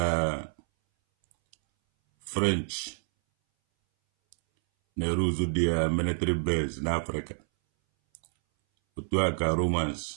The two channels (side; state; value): left; silent; 59 dB below the other